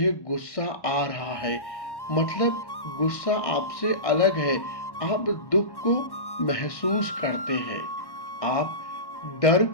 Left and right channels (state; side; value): late; right; 1.1 ms